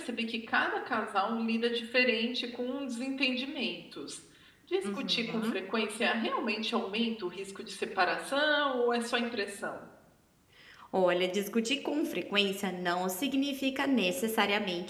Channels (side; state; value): both; identical; correlation 1.00